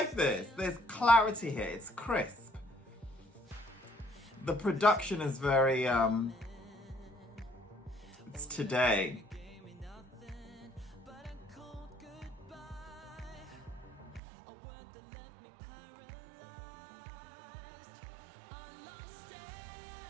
this. There's clarity here. It's crisp. The production is very, it's today.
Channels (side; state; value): left; drops out; at 14.2 s